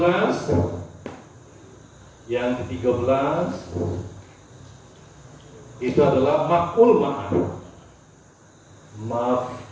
itu adalah maf'ul ma'ah.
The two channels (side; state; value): both; identical; correlation 1.00